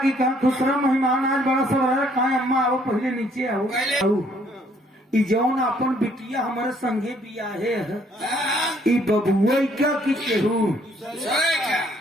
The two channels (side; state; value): both; normal; correlation 0.65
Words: कहा दूसरा मेहमान आज बड़ा सब रहा कहा अम्मा आओ पहले नीचे आओ ई जौन अपन बिटिया हमारे संगे बियाहे है हाँ, ई बबुआ क्या की केहू सोए क्या?